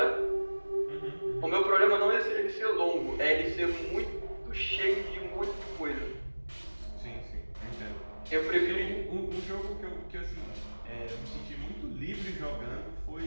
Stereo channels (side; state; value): both; inverted; correlation -1.00